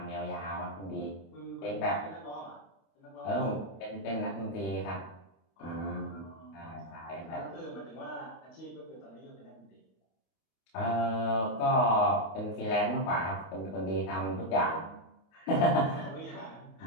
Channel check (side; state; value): right; late; 27 ms